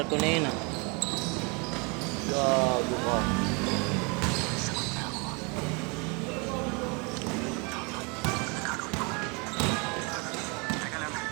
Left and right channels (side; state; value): left; quieter; 31.0 dB